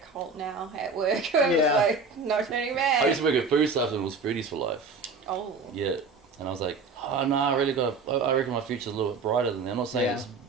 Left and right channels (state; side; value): quieter; left; 4.3 dB